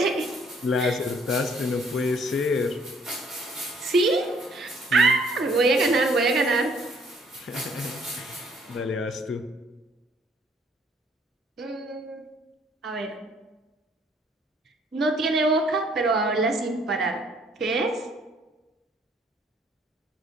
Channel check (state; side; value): normal; both; correlation 0.63